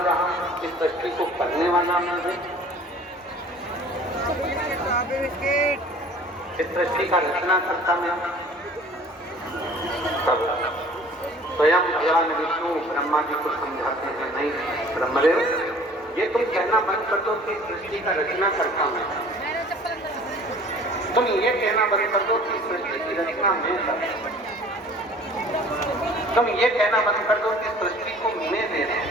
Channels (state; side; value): normal; both; correlation 0.48